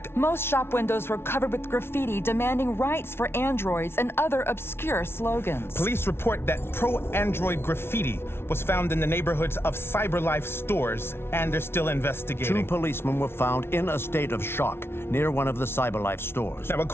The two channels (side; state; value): right; late; 0.12 ms